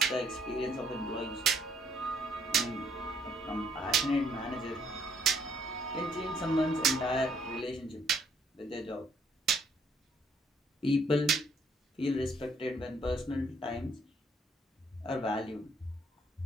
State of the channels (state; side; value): normal; both; correlation 0.67